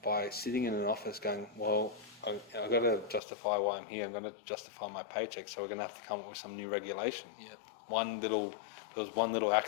by sitting in an office going, well, I've got to justify why I'm here, I'm going to justify my paycheck, so we're going to have to come up with some new regulation. Yeah. There was one little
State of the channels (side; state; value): right; drops out; at 3.2 s